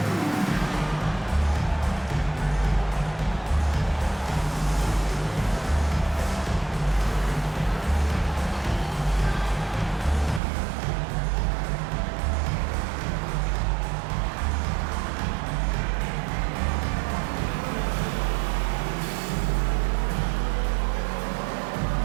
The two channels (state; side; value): drops out; left; at 10.4 s